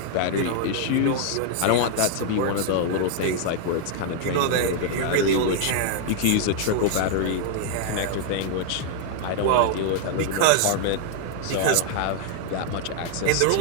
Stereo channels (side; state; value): both; different; correlation 0.00